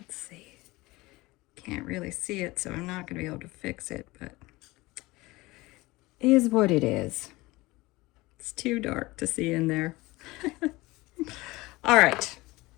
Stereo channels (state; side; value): quieter; right; 21.1 dB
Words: see. Can't really see it, so I'm not going to be able to fix it, but it is what it is. It's too dark to see in there. All right.